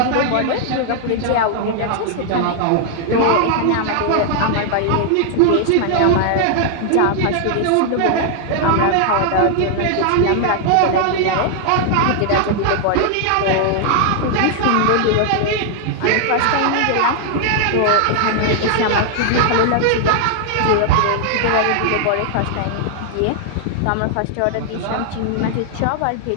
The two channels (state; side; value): different; both; correlation 0.00